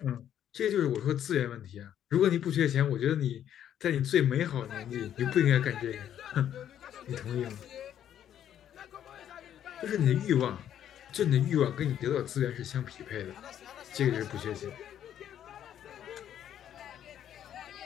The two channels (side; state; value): right; quieter; 10.3 dB